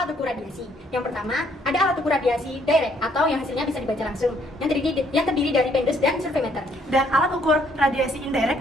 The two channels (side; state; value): both; normal; correlation 0.67